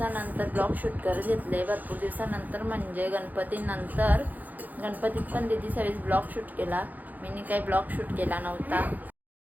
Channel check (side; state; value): left; late; 0.082 ms